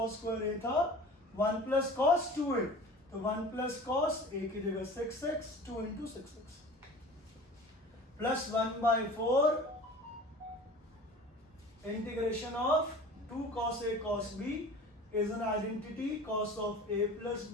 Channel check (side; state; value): both; normal; correlation 0.41